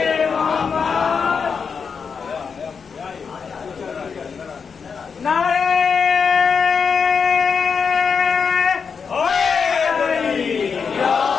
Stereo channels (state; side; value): quieter; right; 5.9 dB